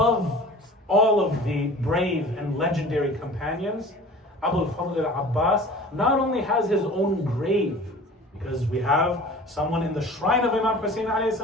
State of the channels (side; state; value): both; normal; correlation 0.42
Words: all of the brave and legendary companions, Abu al-Fadl al-Abbas not only has his own grave, because we have someone in the shrine of Imam Hussein alayhi